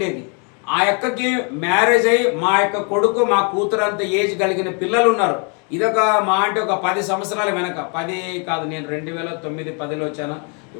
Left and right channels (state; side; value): quieter; right; 36.9 dB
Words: ఆ అక్కకి మ్యారేజ్ అయ్యి మా యొక్క కొడుకు, మా కూతురు అంత ఏజ్ కలిగిన పిల్లలు ఉన్నారు. ఇదొక మా అంటే ఒక 10 సంవత్సరాల వెనక, 10 కాదు, నేను 2009-10లో వచ్చాను,